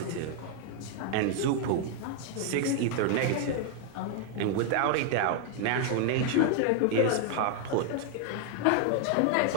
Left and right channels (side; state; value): both; different; correlation 0.00